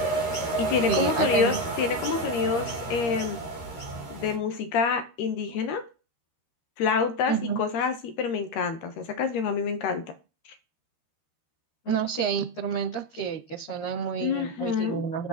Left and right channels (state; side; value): late; right; 13 ms